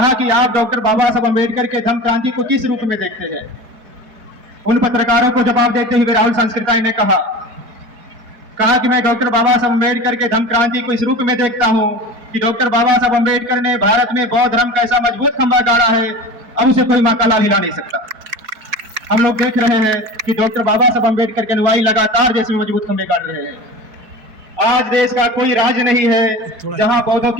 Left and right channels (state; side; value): late; left; 4.6 ms